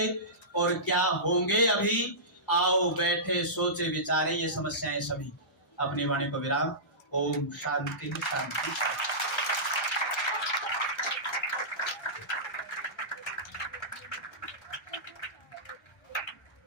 और क्या होंगे अभी, आओ बैठे सोचे विचारे, ये समस्याएं सभी। अपनी वाणी को विराम। ओम शांति शांति शांति।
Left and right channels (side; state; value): both; normal; correlation -0.19